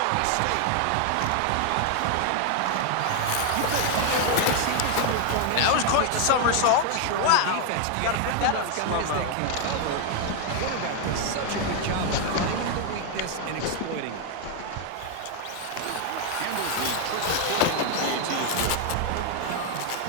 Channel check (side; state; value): both; different; correlation 0.01